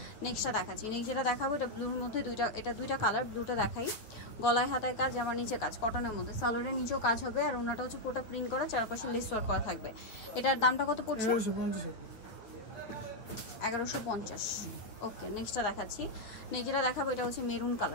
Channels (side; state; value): right; late; 8.8 ms